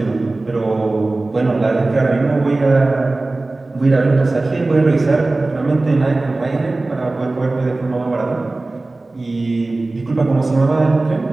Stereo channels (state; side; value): quieter; left; 3.1 dB